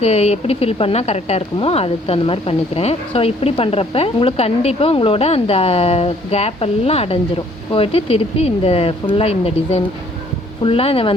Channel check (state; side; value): normal; both; correlation 0.61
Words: எப்படி ஃபில் பண்ணால் கரெக்டாக இருக்குமோ அதுக்கு தகுந்த மாதிரி பண்ணிக்கிறேன். ஸோ இப்படி பண்ணுறப்ப உங்களுக்கு கண்டிப்பாக உங்களோட அந்த கேப் எல்லாம் அடைஞ்சிரும். போயிட்டு திருப்பி இந்த ஃபுல்லாக இந்த டிசைன் ஃபுல்லாக இதை